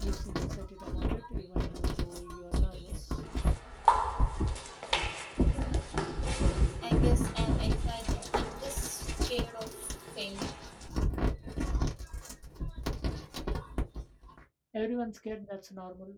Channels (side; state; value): both; identical; correlation 1.00